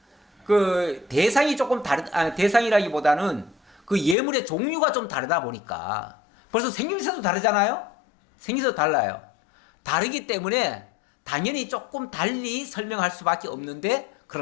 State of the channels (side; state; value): right; drops out; at 4.2 s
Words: 그 대상이 조금 대상이라기보다는 그 예물의 종류가 좀 다르다 보니까 벌써 생김새도 다르잖아요. 생김새도 달라요. 다르기 때문에 당연히 조금 달리 설명할 수밖에 없는데